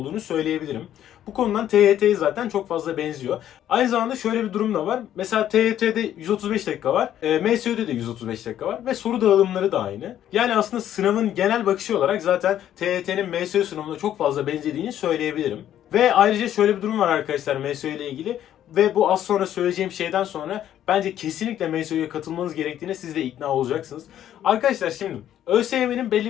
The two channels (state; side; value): quieter; right; 11.2 dB